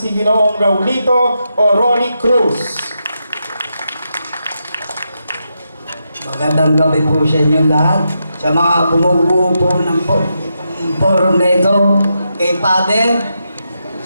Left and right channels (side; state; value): both; inverted; correlation -0.85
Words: Ginoong Raulito o Rolly Cruz. Magandang gabi po sa inyo lahat. Sa mga bumubuo po ng forum na ito, kay Father,